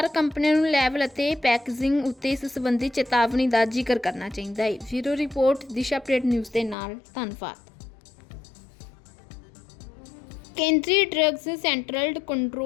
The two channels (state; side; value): drops out; right; at 6.8 s